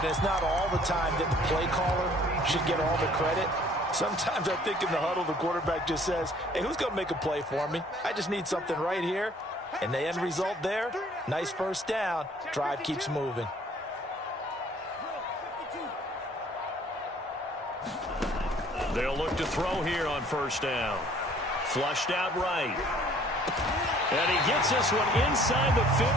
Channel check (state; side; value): normal; both; correlation 0.57